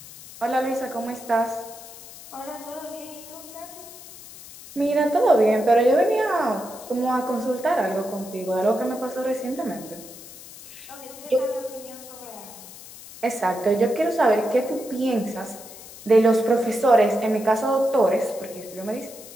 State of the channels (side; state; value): left; noise; hiss, 17 dB below the sound